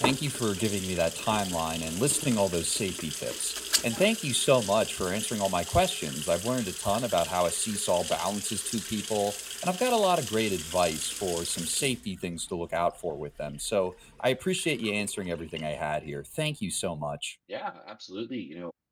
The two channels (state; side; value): identical; both; correlation 1.00